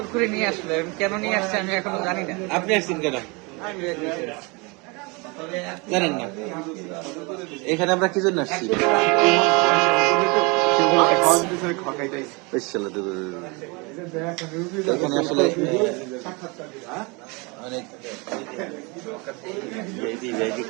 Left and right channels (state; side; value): quieter; left; 28.5 dB